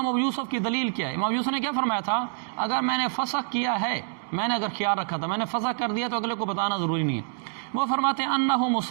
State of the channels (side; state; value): left; silent; digital silence